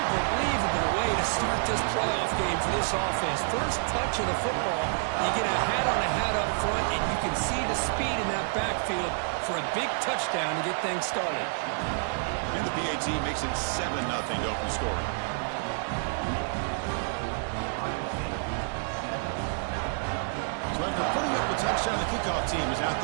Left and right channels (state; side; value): silent; left; 59 dB below the other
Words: way to start this playoff game for this offense. First touch of the football, you get a hat up front, and you can see the speed in that backfield for a big touchdown to get things started. And the PAT makes it 7-0 to open scoring. So after putting up the touchdown, the kickoff team is out